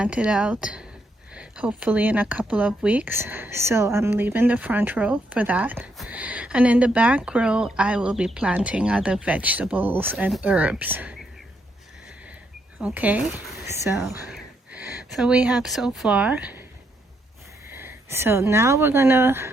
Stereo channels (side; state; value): both; normal; correlation 0.77